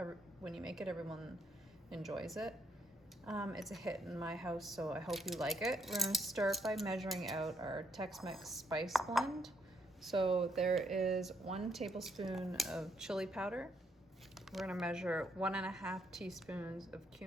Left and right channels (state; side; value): normal; both; correlation 0.72